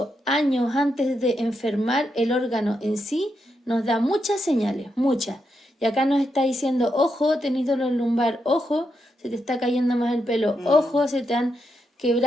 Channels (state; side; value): normal; both; correlation 0.83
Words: años antes de enfermar el órgano en sí, nos da muchas señales, muchas. Y acá nos está diciendo, ojo, tenés dolor lumbar, ojo, se te está cayendo más el pelo, ojo, se te han